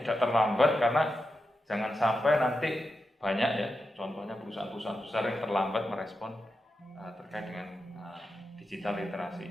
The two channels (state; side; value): normal; both; correlation 0.89